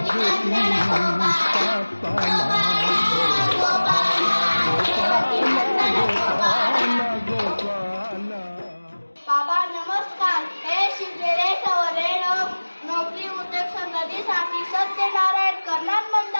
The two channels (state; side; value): inverted; both; correlation -1.00